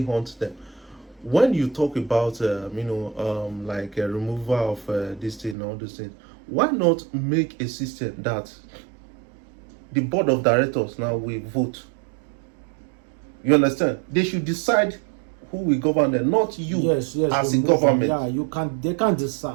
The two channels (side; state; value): left; drops out; at 5.6 s